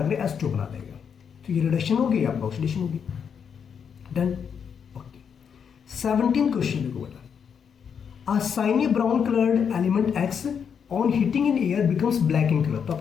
के H2 बना देगा, तो ये रिडक्शन होगी, आपका ऑक्सीडेशन होगी। डन। ओके, 17 क्वेश्चन देखो बेटा, अ shiny brown coloured element X on heating in air becomes black in colour. तो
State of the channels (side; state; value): right; quieter; 7.1 dB